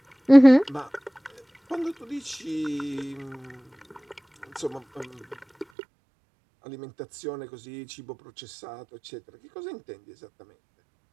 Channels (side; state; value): left; drops out; at 5.7 s